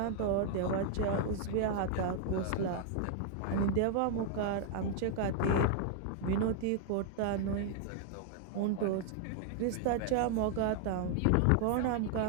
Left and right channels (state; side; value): different; both; correlation 0.00